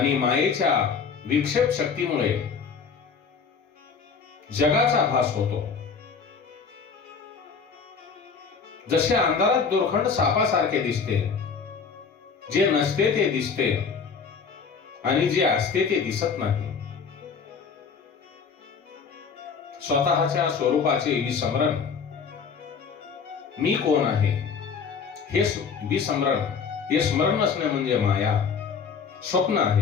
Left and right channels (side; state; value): right; quieter; 5.8 dB